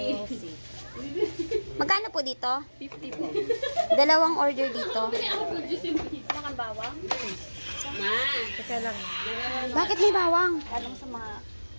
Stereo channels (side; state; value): both; inverted; correlation -1.00